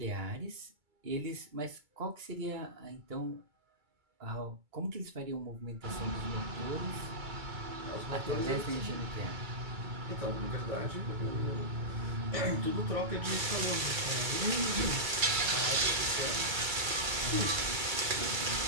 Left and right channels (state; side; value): late; left; 2.3 ms